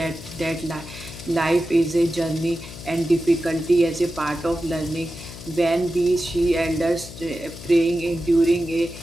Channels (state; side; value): noise; left; hum, 14 dB below the sound